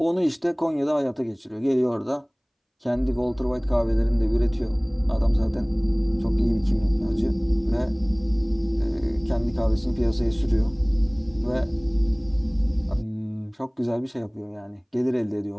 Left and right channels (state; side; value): identical; both; correlation 1.00